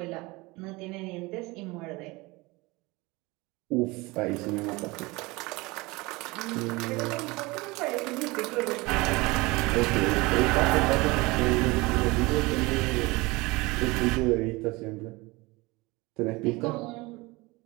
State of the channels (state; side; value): quieter; left; 23.2 dB